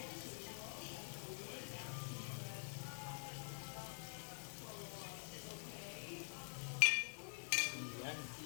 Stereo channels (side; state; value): right; silent; digital silence